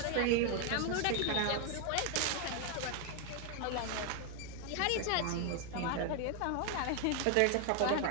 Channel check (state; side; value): different; both; correlation 0.01